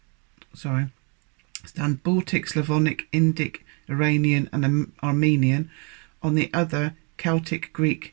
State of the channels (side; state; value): left; quieter; 35.4 dB